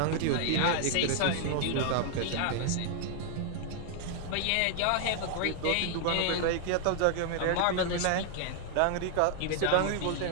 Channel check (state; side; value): different; both; correlation 0.00